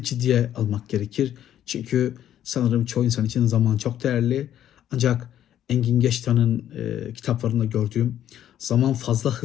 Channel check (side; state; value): right; quieter; 11.1 dB